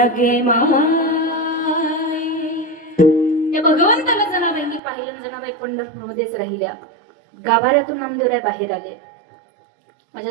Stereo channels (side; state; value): left; drops out; at 4.8 s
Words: गे माई. त्या भगवंताला जनाबाईंनी पाहिलं. जनाबाई पंढरपूरमध्येच राहिल्या. गाभाऱ्यातून नामदेवराय बाहेर आले. माझ्या